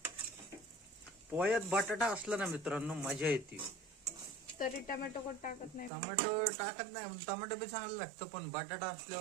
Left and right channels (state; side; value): drops out; left; at 5.9 s